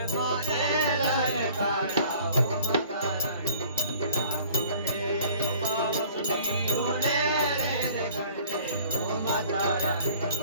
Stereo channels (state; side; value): inverted; both; correlation -0.51